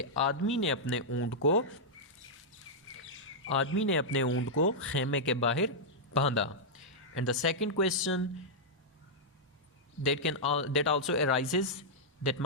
आदमी ने अपने ऊंट को खेमे के बाहर बांधा. And the second question that also arises, that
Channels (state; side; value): normal; both; correlation -0.08